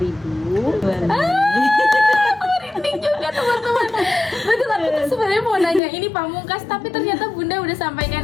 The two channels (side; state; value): right; drops out; at 5.8 s